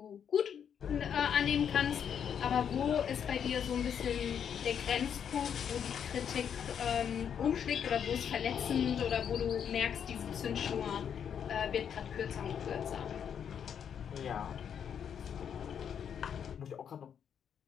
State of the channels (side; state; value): right; quieter; 8.2 dB